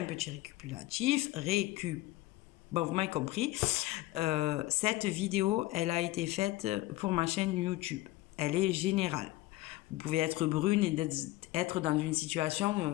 petit récapitulatif. Bon, vous m'avez compris. Cette vidéo, elle a été faite pour ma chaîne YouTube. Elle est générale. Vous pouvez être brune et être dans une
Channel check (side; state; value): right; quieter; 17.9 dB